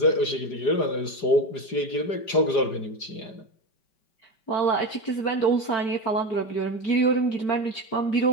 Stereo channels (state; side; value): late; right; 4.9 ms